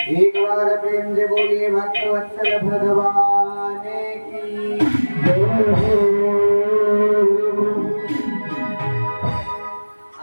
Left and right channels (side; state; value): both; inverted; correlation -1.00